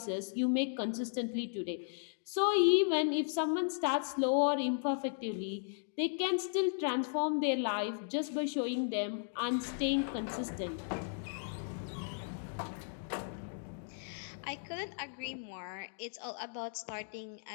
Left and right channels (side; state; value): right; silent; digital silence